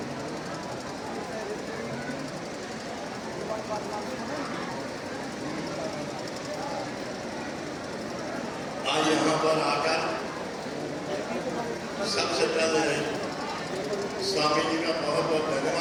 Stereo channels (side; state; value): both; identical; correlation 1.00